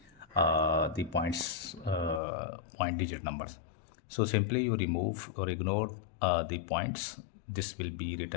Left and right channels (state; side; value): drops out; right; at 2.2 s